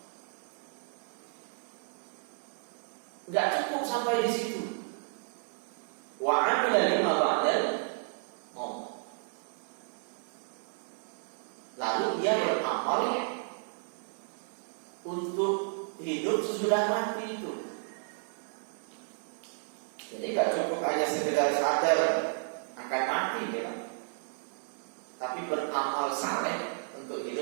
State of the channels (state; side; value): silent; left; digital silence